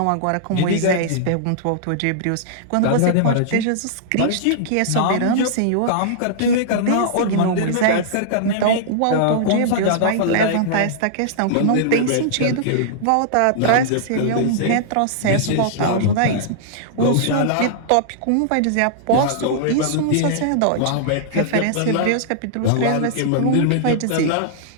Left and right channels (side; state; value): both; different; correlation -0.02